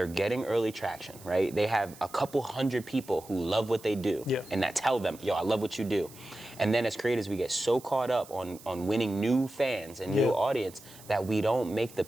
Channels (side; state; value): right; noise; hiss, 20 dB below the sound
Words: getting early traction, right? They have a couple hundred people who love what they do and that tell them, yo, I love what you do. And then as creators, we get so caught up on winning new fans and new audience that we don't make the